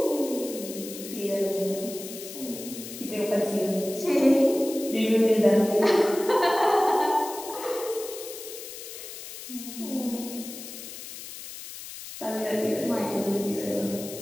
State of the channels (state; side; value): noise; left; hiss, 11 dB below the sound